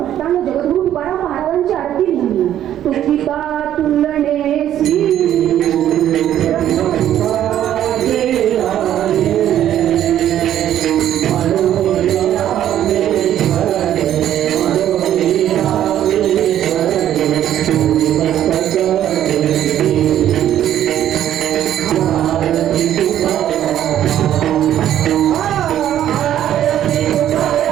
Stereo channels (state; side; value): quieter; left; 11.3 dB